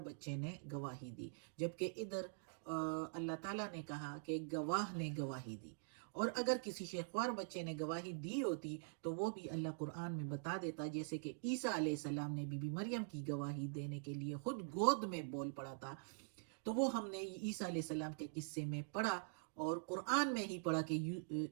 بچے نے گواہی دی، جبکہ ادھر اللہ تعالیٰ نے کہا کہ گواہ نے گواہی دی، اور اگر کسی شیخوار بچے نے گواہی دی ہوتی تو وہ بھی اللہ قرآن میں بتا دیتا، جیسے کہ عیسیٰ علیہ السلام نے بی بی مریم کی گواہی دینے کے لیے خود گود میں بول پڑا تھا، تو وہ ہم نے عیسیٰ علیہ السلام کے قصے میں پڑھا، اور قرآن میں ہی پڑھا کہ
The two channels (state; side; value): silent; left; digital silence